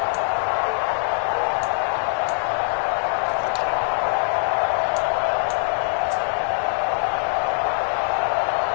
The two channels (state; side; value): silent; right; digital silence